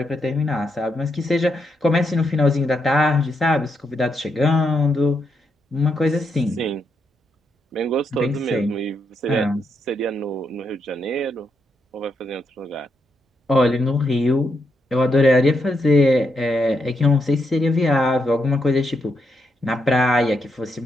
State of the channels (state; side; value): normal; both; correlation 0.80